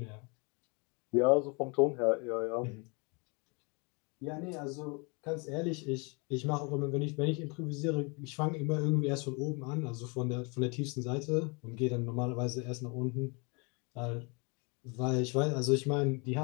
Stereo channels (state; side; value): quieter; right; 31.1 dB